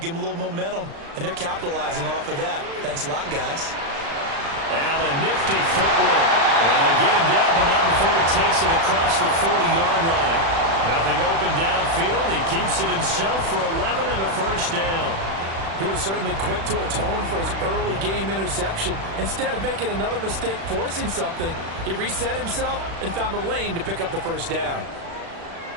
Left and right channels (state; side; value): late; left; 36 ms